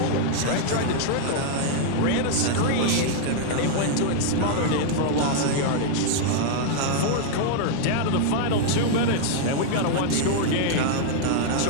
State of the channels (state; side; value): different; both; correlation -0.01